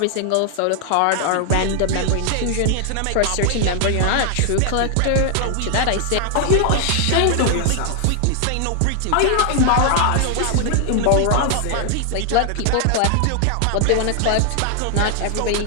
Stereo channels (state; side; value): different; both; correlation 0.00